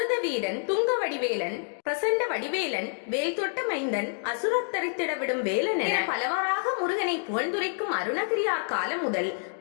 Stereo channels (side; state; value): right; silent; digital silence